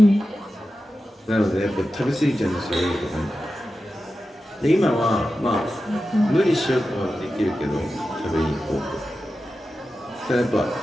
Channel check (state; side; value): normal; both; correlation 0.92